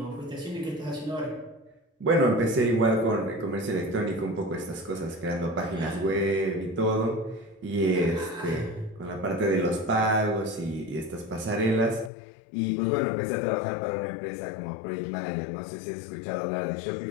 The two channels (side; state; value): right; drops out; at 12.1 s